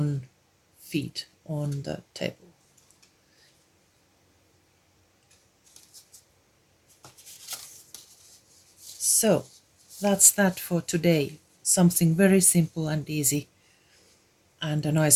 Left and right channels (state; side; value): identical; both; correlation 1.00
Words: feet on the table. So that's that for today. Something very simple and easy, and a